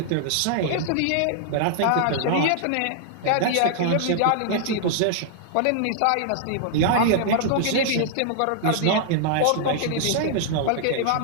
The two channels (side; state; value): both; different; correlation -0.01